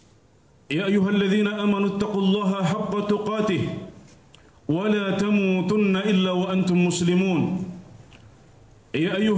يا أيها الذين آمنوا اتقوا الله حق تقاته ولا تموتن إلا وأنتم مسلمون يا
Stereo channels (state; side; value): identical; both; correlation 1.00